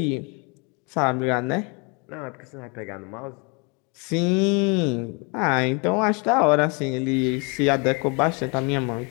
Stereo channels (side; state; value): right; quieter; 32.3 dB